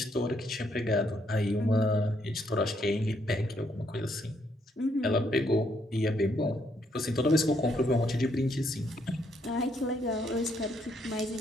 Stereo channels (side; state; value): both; normal; correlation 0.73